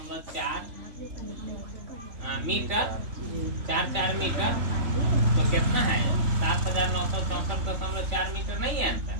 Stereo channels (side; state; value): left; late; 3.5 ms